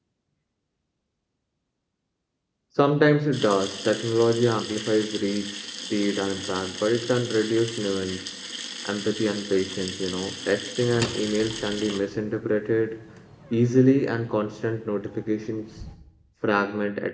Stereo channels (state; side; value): identical; both; correlation 1.00